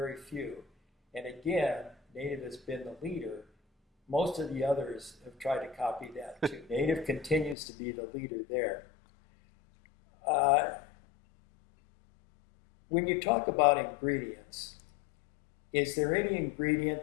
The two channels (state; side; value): drops out; right; at 7.6 s